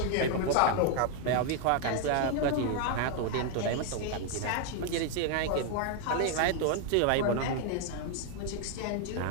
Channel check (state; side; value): different; both; correlation 0.00